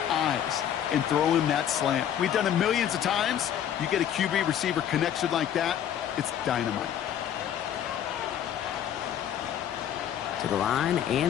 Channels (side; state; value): right; quieter; 9.9 dB